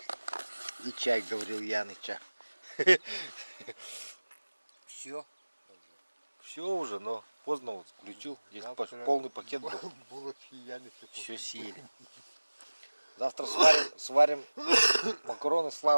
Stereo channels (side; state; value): both; inverted; correlation -1.00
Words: И чай, говорил Яныча. Все. Все уже, но поздно вот включил. Здесь полный пакет был. Булочки Яны. Все съели. Завтра сварим макароны